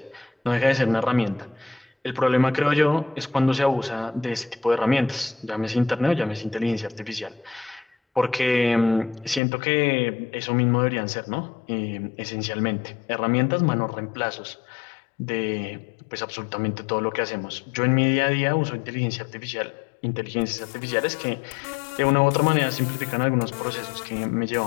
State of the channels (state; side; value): drops out; right; at 9.4 s